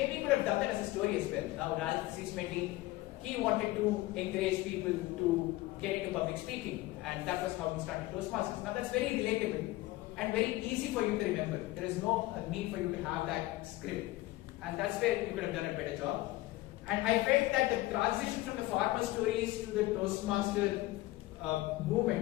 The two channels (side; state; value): right; quieter; 18.3 dB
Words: you could have done that as a story as well. Now, Raghavendra, he wanted to encourage people to get into public speaking, and that was how he started Toastmasters. Now, that's very relatable and very easy for you to remember. There is no need for you to have that script, and that's where you could have done a better job. And I felt that the transition from the farmer stories to the Toastmaster